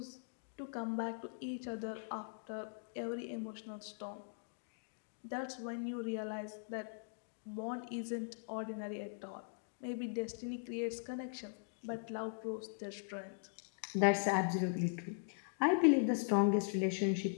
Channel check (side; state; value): right; silent; digital silence